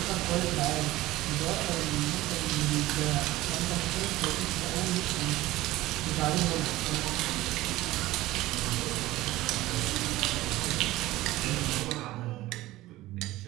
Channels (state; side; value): quieter; left; 17.3 dB